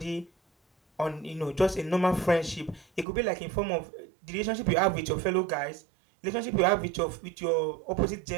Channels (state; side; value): drops out; left; at 3.1 s